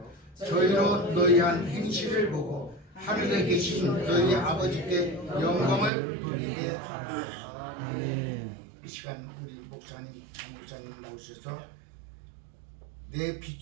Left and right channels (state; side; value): drops out; left; at 5.9 s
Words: 저희로 너희 한 행실을 보고 하늘에 계신 너희 아버지께 영광을 돌리게 하라. 아멘. 이 시간 우리 목사님, 장목사님 나오셔서 내